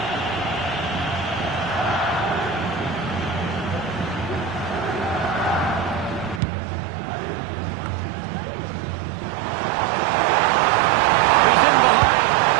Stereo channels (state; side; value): drops out; left; at 6.4 s